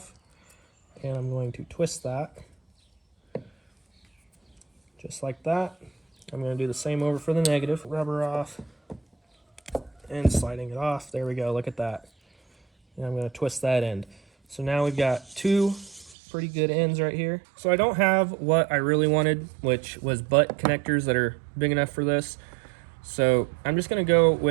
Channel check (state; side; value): drops out; left; at 16.2 s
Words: And I'm going to twist that. Just like that. I'm going to do the same over for the negative. Rubber off. And sliding it off. There we go. Look at that. And I'm going to twist that end. So now we've got 2 pretty good ends right here. So I don't have what I really wanted, which was butt connectors that are big enough for this. So I'm just going to go